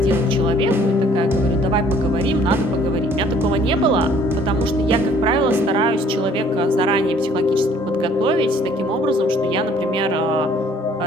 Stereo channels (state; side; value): normal; both; correlation 0.58